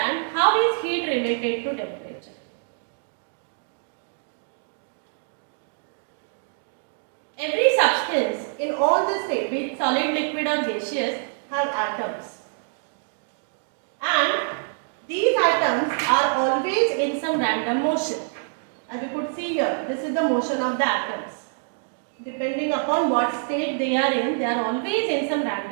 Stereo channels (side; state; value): left; silent; digital silence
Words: how is heat related to temperature. Every substance in all the state, be it solid, liquid or gaseous, have atoms. And these atoms are always in some random motion. As you could see here, this is the motion of the atoms. Depending upon what state they are always in some